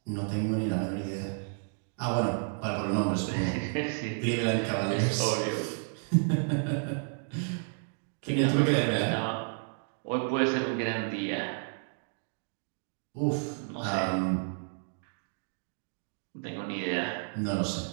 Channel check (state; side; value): silent; left; 57 dB below the other